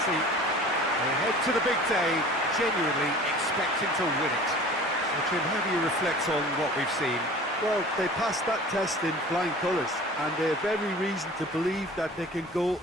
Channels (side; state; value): both; normal; correlation 0.43